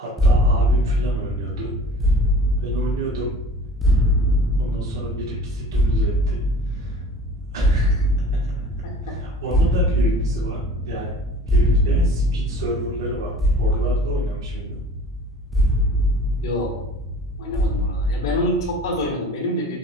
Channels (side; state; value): both; normal; correlation 0.45